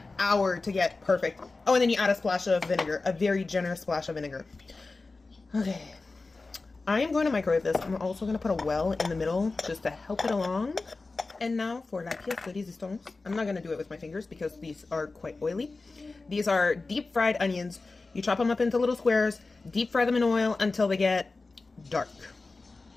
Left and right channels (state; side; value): quieter; right; 3.6 dB